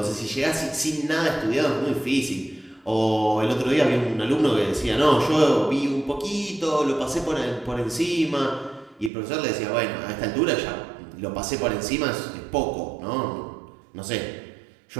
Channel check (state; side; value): drops out; left; at 9.1 s